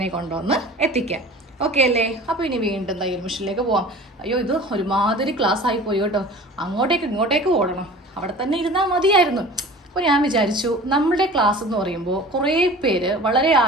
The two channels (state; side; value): normal; both; correlation 0.41